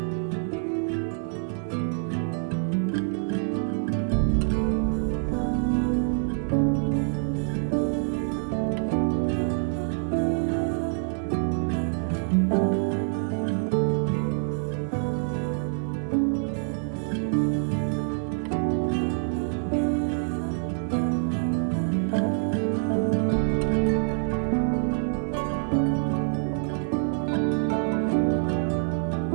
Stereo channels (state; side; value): silent; left; 61 dB below the other